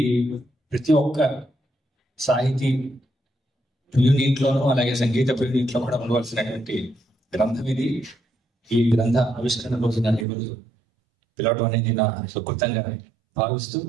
ప్రతి ఒక్క సాహితీ ప్రియునీట్లోనూ అలాగే సంగీత ప్రియునీట్లో కూడా ఉండవలసినటువంటి గ్రంథం ఇది. ఈ గ్రంథ ఆవిష్కరణ రోజు నన్ను ఈరోజు పిలవటం అనేది నా సుకృతంగా భావిస్తూ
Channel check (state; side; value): drops out; left; at 10.2 s